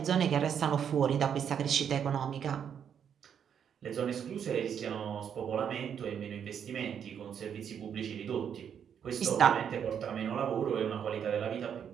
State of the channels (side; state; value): left; quieter; 8.2 dB